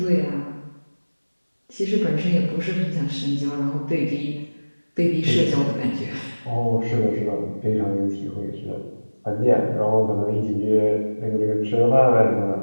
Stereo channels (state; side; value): inverted; both; correlation -1.00